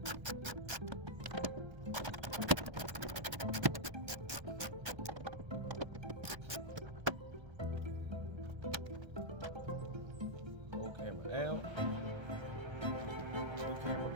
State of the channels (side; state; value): left; late; 1.3 ms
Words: Out. Two camera